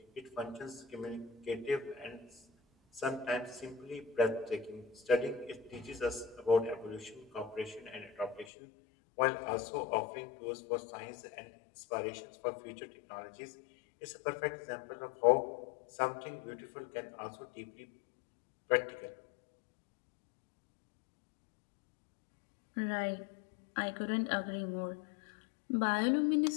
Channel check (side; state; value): right; drops out; at 8.5 s